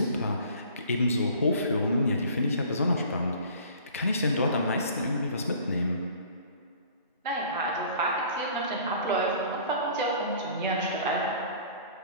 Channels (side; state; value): both; inverted; correlation -0.49